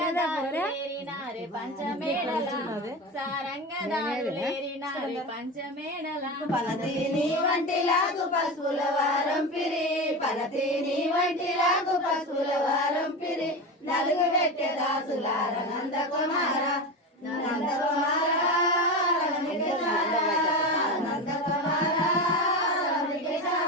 పంచమేళల సారంగదారులేరినారే పంచమేళల పలతీని వంటిలాగు పసుపుల వారం పిరి పలతీని వంటిలాగు పసుపుల వారం పిరి నలుగు పెట్టె దాసులార నందకుమార నందకుమార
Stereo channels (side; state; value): both; normal; correlation 0.23